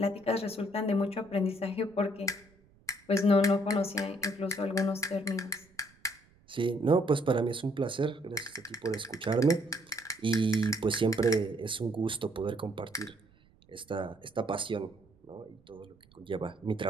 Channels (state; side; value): noise; right; rumble, 30 dB below the sound